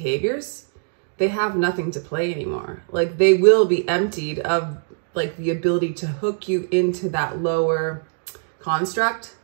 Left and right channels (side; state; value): left; silent; digital silence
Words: they have nothing to play anymore. Like, they will be emptied of like the ability to hook you into that lower construct.